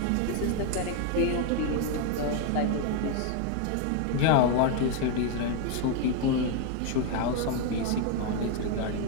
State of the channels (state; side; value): different; both; correlation 0.01